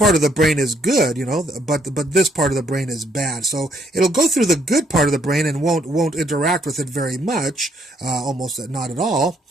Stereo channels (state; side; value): normal; both; correlation 0.70